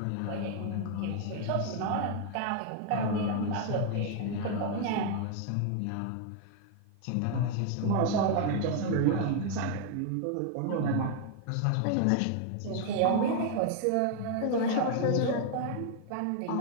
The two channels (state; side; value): different; both; correlation 0.00